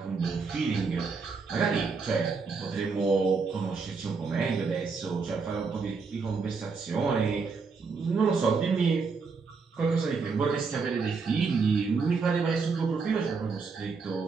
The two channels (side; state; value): left; quieter; 4.8 dB